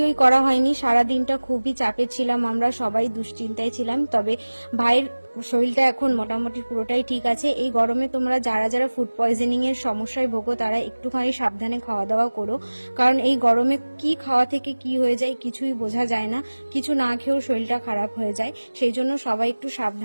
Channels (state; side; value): inverted; both; correlation -1.00